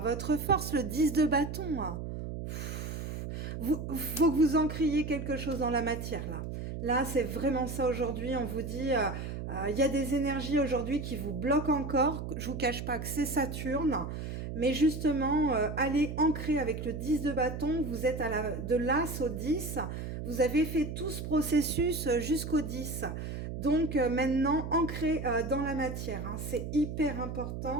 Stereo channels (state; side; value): noise; right; hum, 6 dB below the sound